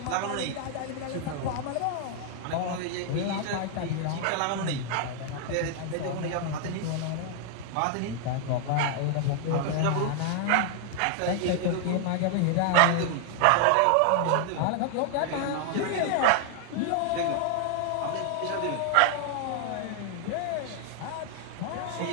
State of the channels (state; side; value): different; both; correlation 0.00